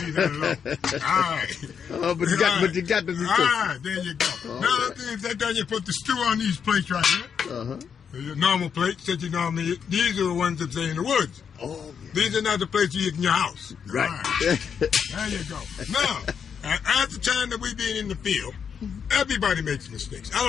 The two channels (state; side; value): quieter; right; 7.1 dB